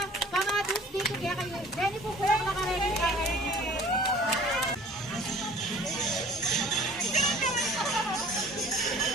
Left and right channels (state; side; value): normal; both; correlation 0.49